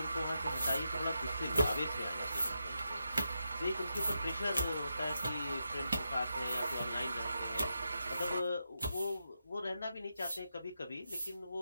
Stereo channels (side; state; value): both; inverted; correlation -0.86